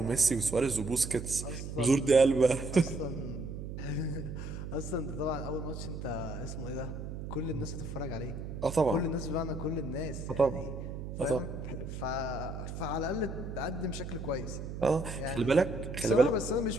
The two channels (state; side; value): noise; right; hum, 7 dB below the sound